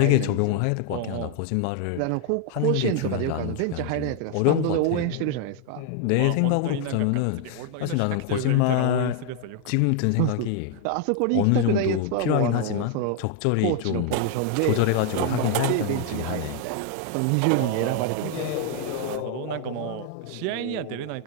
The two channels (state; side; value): different; both; correlation 0.00